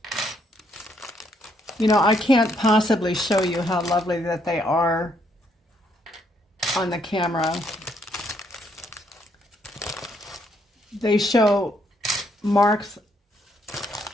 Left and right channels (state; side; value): normal; both; correlation 0.72